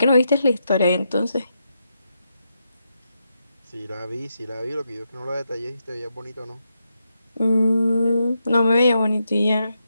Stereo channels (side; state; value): both; inverted; correlation -0.84